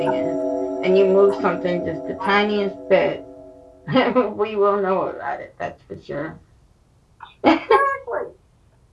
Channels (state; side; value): identical; both; correlation 1.00